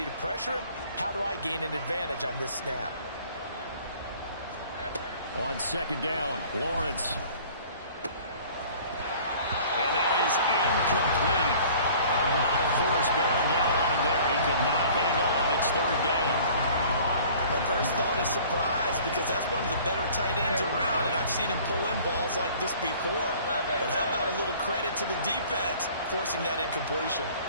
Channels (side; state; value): both; inverted; correlation -0.50